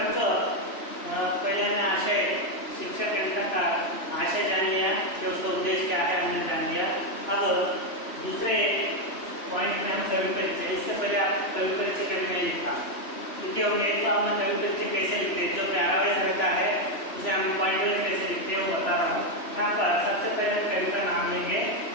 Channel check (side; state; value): right; late; 3.1 ms